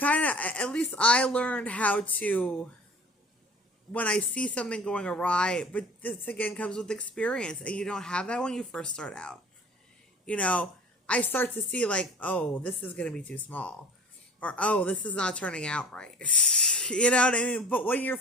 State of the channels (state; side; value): normal; both; correlation 0.44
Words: of, at least I learned how to, when I see something going awry, but this again comes with experience, and you don't have that when you first start out. I start to see like, oh, this is going to be too small, or, oh, this is not turning out right. You know what I mean? But when you're